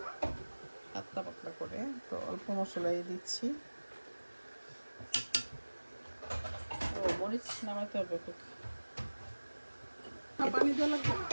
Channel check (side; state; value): both; inverted; correlation -1.00